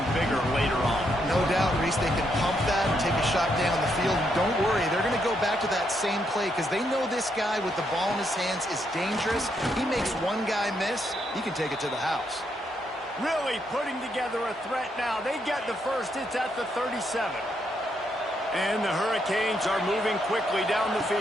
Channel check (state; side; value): normal; both; correlation 0.77